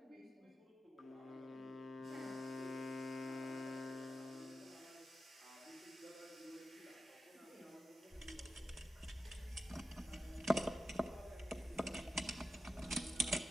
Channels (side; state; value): both; normal; correlation 0.91